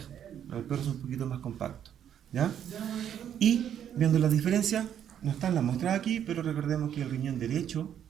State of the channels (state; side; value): quieter; left; 9.6 dB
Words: Los del perro son un poquito más compactos. ¿Ya? Y viendo las diferencias, no están las muestras aquí, pero recordemos que el riñón derecho